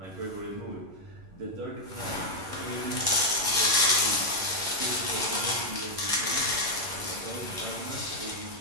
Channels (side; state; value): left; late; 11 ms